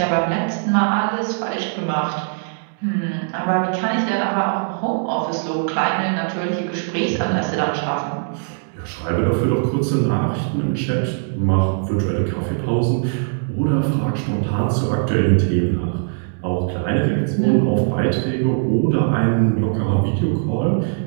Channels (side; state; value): left; silent; digital silence